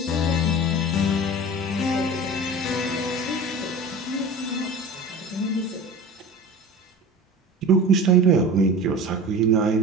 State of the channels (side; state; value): both; normal; correlation 0.35